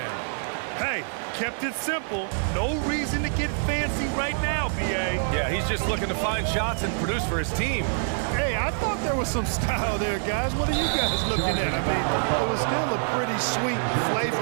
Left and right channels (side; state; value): left; silent; 61 dB below the other